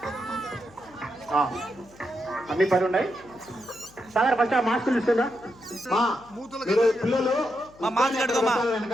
అన్ని పని ఉన్నాయి సాగర్. ఫస్ట్ ఆ మాస్క్ ఇస్తుందా పిల్లలు? మాస్క్ కట్టుకోమా,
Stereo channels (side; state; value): left; noise; hum, 25 dB below the sound